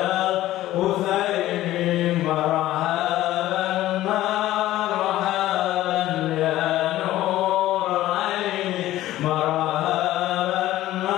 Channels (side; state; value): right; quieter; 14.9 dB